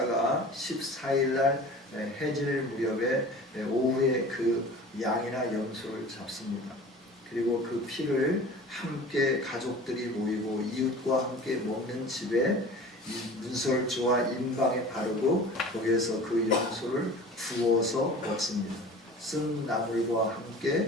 14일 날 해질 무렵에 오후에 그 양이나 염소를 잡습니다. 그리고 그 피를 함께 가족들이 모이고 이웃과 함께 먹는 집에 문설주와 인방에 바르고 거기에서 그 염소를 구워서 먹습니다. 쓴 나물과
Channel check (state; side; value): normal; both; correlation 0.40